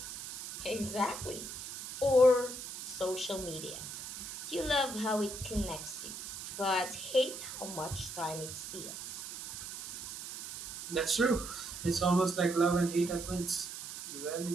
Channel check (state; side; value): noise; right; hiss, 8 dB below the sound